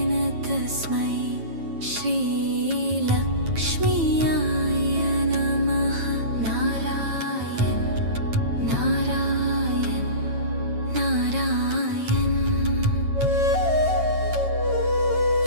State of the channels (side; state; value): left; late; 9.2 ms